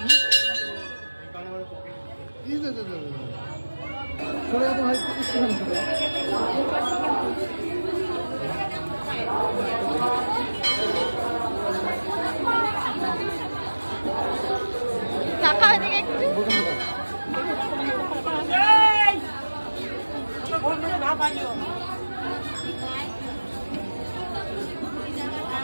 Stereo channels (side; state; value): both; inverted; correlation -1.00